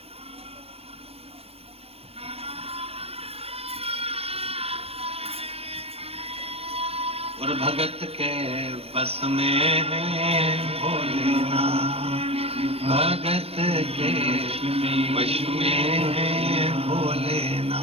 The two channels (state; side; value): late; left; 0.29 ms